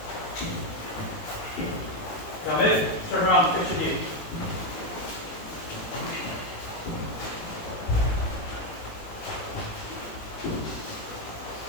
Come in, turn around, fix your knee.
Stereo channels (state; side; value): late; right; 18 ms